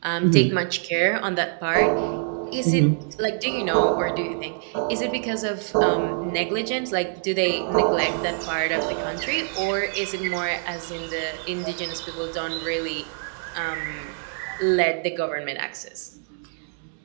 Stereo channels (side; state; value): left; silent; 62 dB below the other